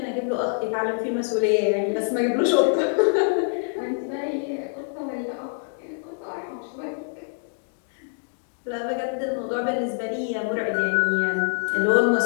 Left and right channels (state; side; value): silent; right; digital silence